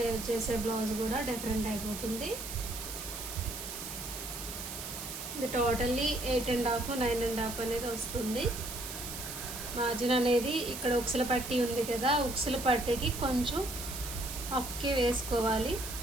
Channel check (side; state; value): right; noise; hiss, 8 dB below the sound